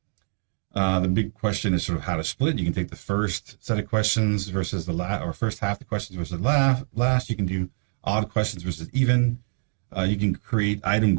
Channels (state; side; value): silent; left; digital silence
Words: The big question is sort of how to split. You can take the first set of questions versus the last, or first half of the questions versus the last. You can do odd questions versus even. You can create item